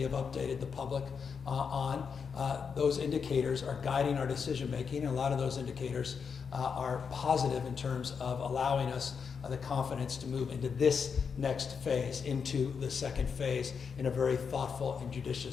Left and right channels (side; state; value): right; quieter; 6.1 dB